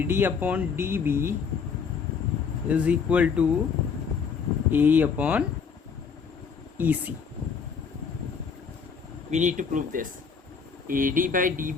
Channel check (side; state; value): right; quieter; 5.9 dB